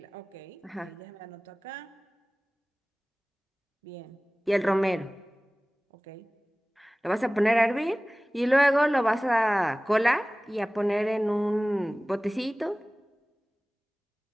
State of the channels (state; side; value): normal; both; correlation 0.98